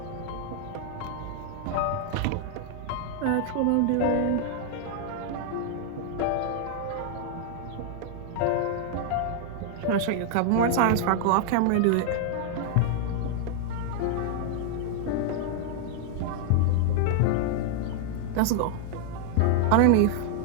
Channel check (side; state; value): both; different; correlation 0.00